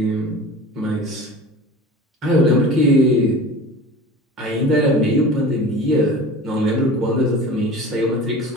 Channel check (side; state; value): both; normal; correlation 0.38